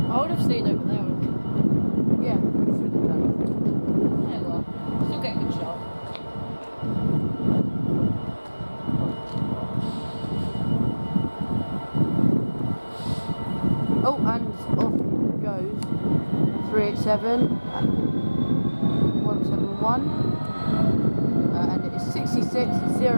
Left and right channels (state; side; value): inverted; both; correlation -1.00